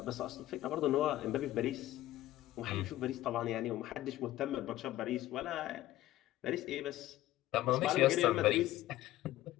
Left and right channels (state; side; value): quieter; right; 15.0 dB